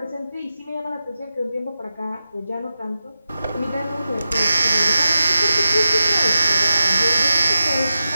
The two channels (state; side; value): inverted; both; correlation -0.92